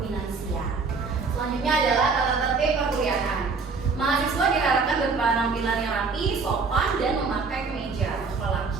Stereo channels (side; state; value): left; quieter; 4.6 dB